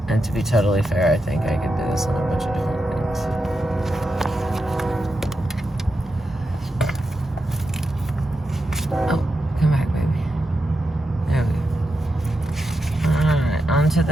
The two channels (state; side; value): normal; both; correlation 0.87